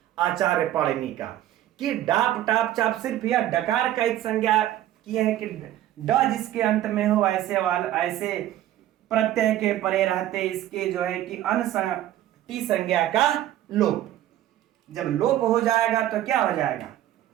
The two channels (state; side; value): quieter; left; 13.1 dB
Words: आचार्य पाणिनि का, कि डाप टाप चाप सिर्फ यह डकार का एक संज्ञा किए है कि ड जिसके अंत में हो ऐसे प्रत्यय के परे रहते इसके जो है कि टी संज्ञा का लोप। जब लोप हो जाएगा तो क्या हो जाएगा,